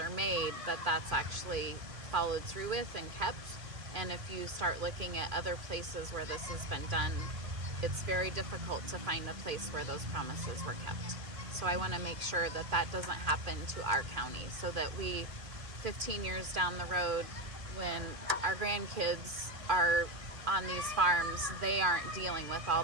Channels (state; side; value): late; left; 2.4 ms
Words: made, that that's actually followed through with and kept. And if you start looking at other places where this has been done, it's very difficult to find a place where those promises were kept. So I want to make sure that that doesn't happen to our county, so that we, 15 years down the road, when our grandkids are on these farms, they aren't dealing with